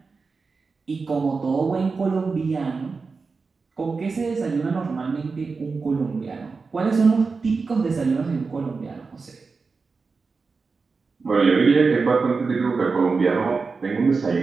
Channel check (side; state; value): left; quieter; 4.5 dB